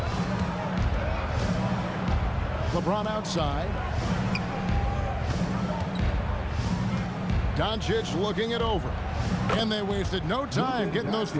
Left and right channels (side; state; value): both; identical; correlation 1.00